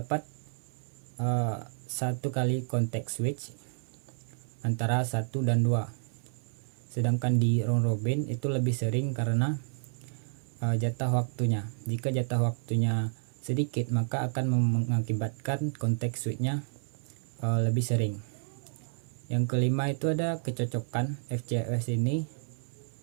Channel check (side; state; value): left; silent; 57 dB below the other